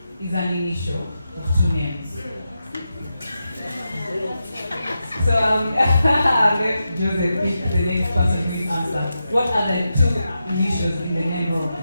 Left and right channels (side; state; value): both; inverted; correlation -0.88